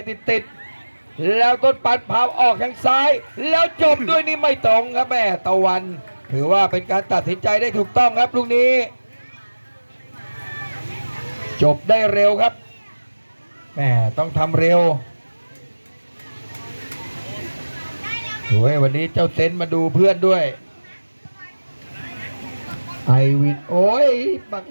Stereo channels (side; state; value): both; inverted; correlation -1.00